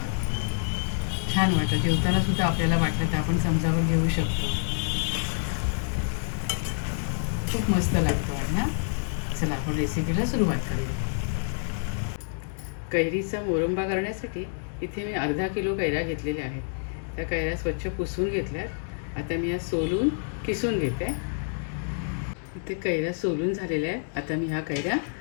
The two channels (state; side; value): silent; right; digital silence